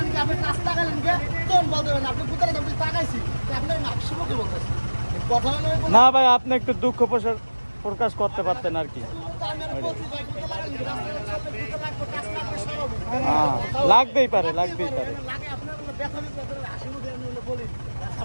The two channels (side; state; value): both; inverted; correlation -1.00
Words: কি, আপনি কাজ তাকালেন কে, তখন বলতে পারেন আপনি কোথায় আপনি তাকাইছি, আপনি হাসি মুখে বলতেছি। কথা না ভাই, আপনি একটু দুঃখ প্রকাশ করতে পারতেন আর কি। লাগবেই পারে